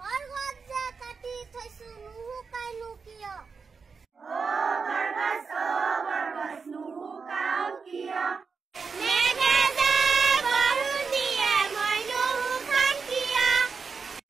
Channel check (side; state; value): left; quieter; 5.2 dB